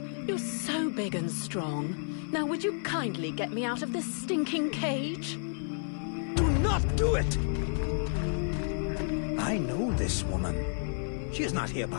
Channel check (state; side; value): silent; right; 57 dB below the other